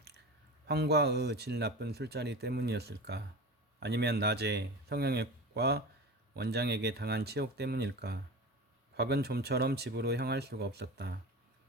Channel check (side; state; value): both; normal; correlation 0.31